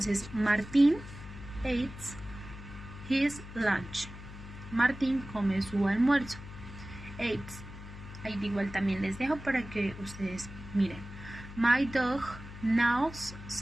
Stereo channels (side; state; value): left; noise; hum, 13 dB below the sound